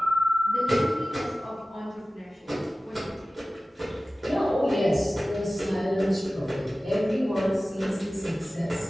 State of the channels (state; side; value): normal; both; correlation 0.97